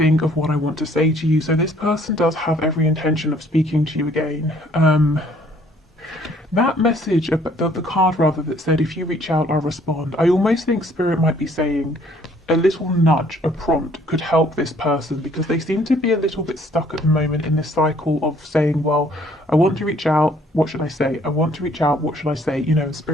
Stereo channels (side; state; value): both; normal; correlation 0.61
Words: of what I want to say to you. So this person does have every intention of speaking to you again. That message, the card rather, that said, if you reach out, I'll respond. I almost think Spirit might be saying a little nudge, a prompt could help this person, because they seem to be a little bit stuck at the moment in this cycle of saying, well, I want to reach out, what should I say? I want to reach out, what should I say? You know,